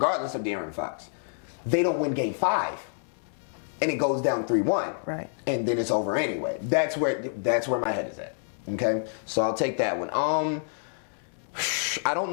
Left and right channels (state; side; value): silent; right; digital silence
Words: of De'Aaron Fox. They don't win Game 5. And it goes down 3-1. Right. And then it's over anyway. That's where my head is at. Okay? So I'll take that one. I